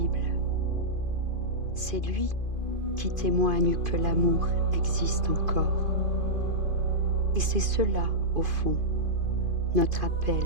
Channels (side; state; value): left; late; 2.5 ms